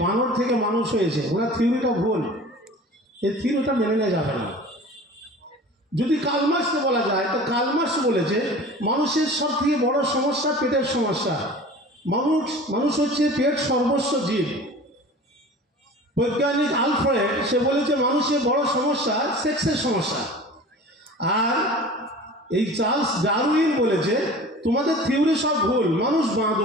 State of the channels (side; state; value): both; normal; correlation 0.40